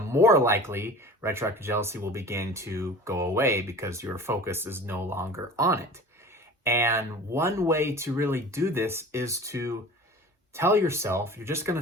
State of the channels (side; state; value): both; normal; correlation 0.40